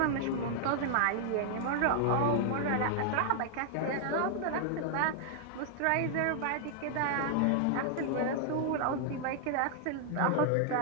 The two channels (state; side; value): different; both; correlation 0.00